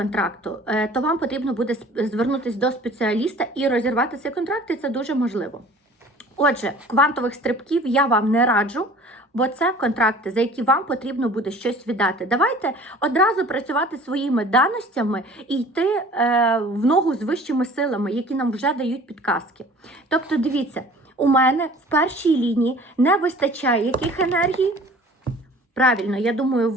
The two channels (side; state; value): both; normal; correlation 0.47